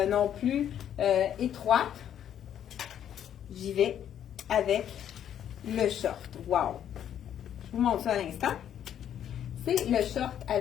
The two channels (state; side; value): quieter; right; 9.9 dB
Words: non plus étroite. J'y vais avec le short. Wow! Je vous montre ça à l'instant. C'est le short